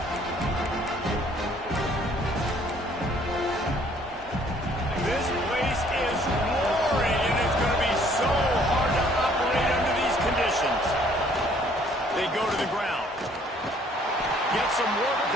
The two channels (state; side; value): normal; both; correlation 0.60